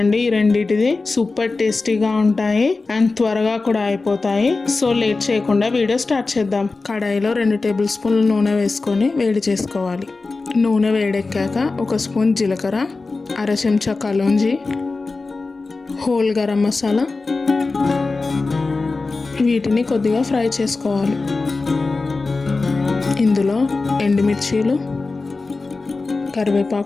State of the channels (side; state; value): right; quieter; 3.7 dB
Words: ఈ రెండిటిది. సూపర్ టేస్టీగా ఉంటాయి అండ్ త్వరగా కూడా అయిపోతాయి. సో లేట్ చేయకుండా వీడియో స్టార్ట్ చేద్దాం. కడాయిలో 2 టేబుల్ స్పూన్ల నూనె వేసుకొని వేడి చేసుకోవాలి. నూనె వేడెక్కాక 1 స్పూన్ జీలకర్ర, అర చెంచా కలోంజి, హోల్ గరం మసాలా, వీటిని కొద్దిగా ఫ్రై చేసుకోవాలి. ఇందులో ఎండుమిర్చీలు,